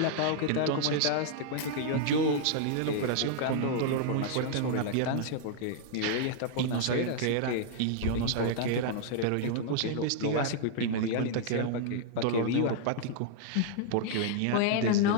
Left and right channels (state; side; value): different; both; correlation -0.01